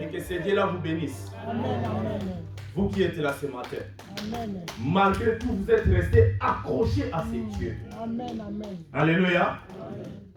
que ces dieux-là vous bénissent. Amen, amen. Vous qui êtes là ce matin. Amen. Malgré tout, vous êtes restés accrochés à ces dieux. Amen, amen. Alléluia. Amen.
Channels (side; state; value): both; identical; correlation 1.00